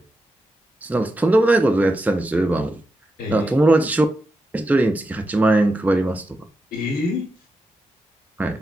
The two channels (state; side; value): normal; both; correlation 0.88